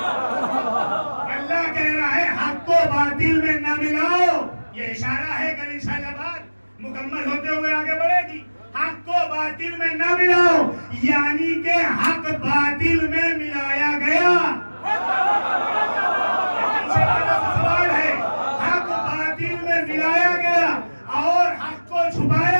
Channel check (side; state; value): both; inverted; correlation -1.00